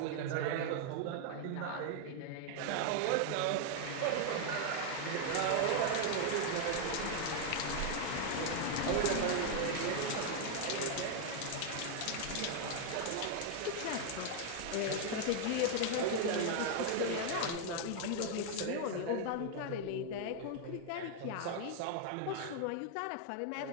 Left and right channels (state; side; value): different; both; correlation 0.00